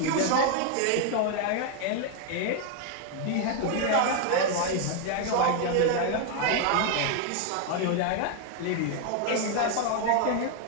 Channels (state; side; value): different; both; correlation 0.01